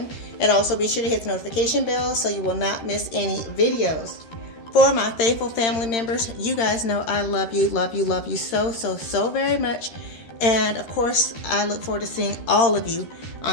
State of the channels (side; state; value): right; late; 13 ms